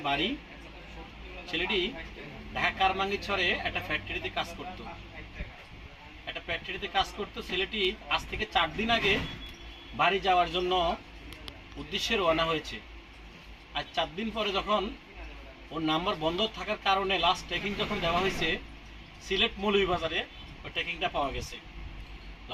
বাড়ি। ছেলেটি ঢাকা কারমাঙ্গিছড়ে একটা ফ্যাক্টরিতে কাজ করতো। ছেলেটি আজ থেকে ৪ দিন আগে বাড়ি যাওয়ার জন্য উদ্দেশ্যে রওনা হয়েছে। আর ৪ দিন পরে যখন ওর নাম্বার বন্ধ থাকার কারণে লাস্ট ট্রেকিং যখন দেওয়া হয়েছে সিলেট মৌলভীবাজারে, ওই ট্রেকিংটা পাওয়া গেছে।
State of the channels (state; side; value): identical; both; correlation 1.00